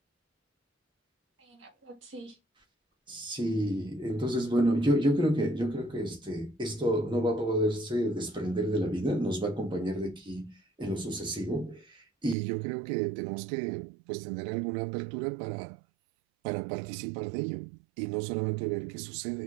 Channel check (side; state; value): left; drops out; at 12.4 s